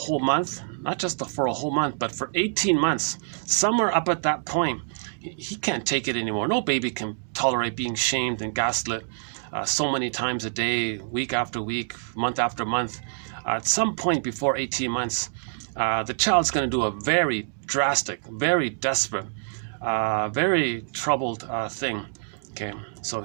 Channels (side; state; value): left; silent; digital silence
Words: month, not just for a whole month, but for 18 months, somewhere up at that point, he can't take it anymore. No baby can tolerate being shamed and gaslit so many times a day, week after week, month after month. At some point before 18 months, the child's going to do a very drastic, very desperate, very troubled thing. Okay, so